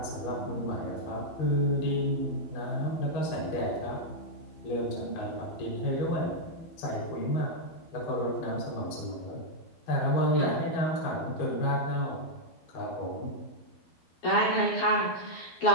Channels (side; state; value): right; late; 12 ms